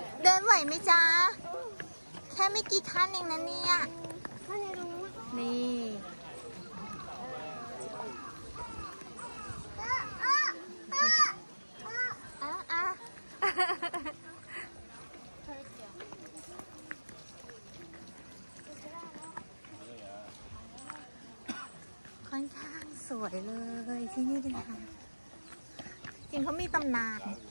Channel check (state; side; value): inverted; both; correlation -1.00